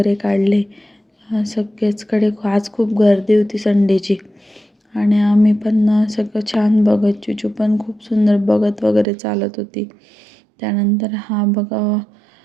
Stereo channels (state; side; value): drops out; left; at 9.1 s